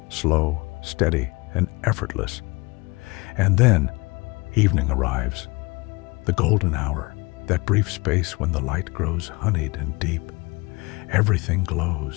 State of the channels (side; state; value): right; quieter; 25.5 dB